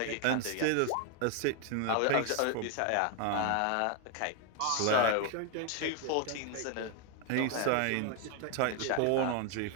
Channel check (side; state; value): both; different; correlation 0.01